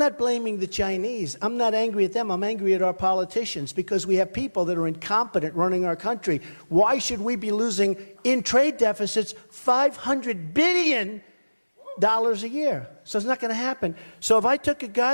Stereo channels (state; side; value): inverted; both; correlation -1.00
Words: blaming the Chinese. I'm not angry at them. I'm angry at our politicians because we have people that are incompetent running our country. Why should we be losing in trade deficits $500 billion a year? So it's not going to happen. So if I took a